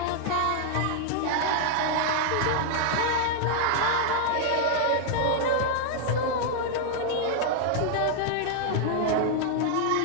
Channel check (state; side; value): different; both; correlation -0.01